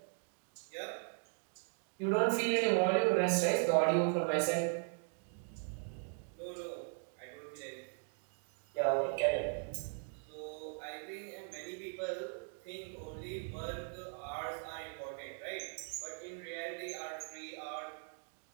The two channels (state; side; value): silent; left; 52 dB below the other